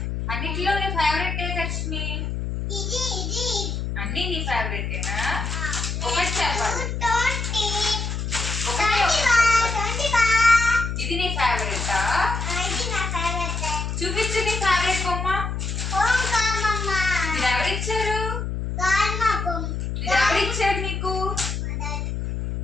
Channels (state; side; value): noise; left; hum, 3 dB below the sound